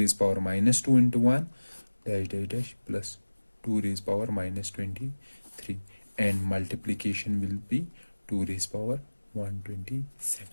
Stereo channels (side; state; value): both; inverted; correlation -1.00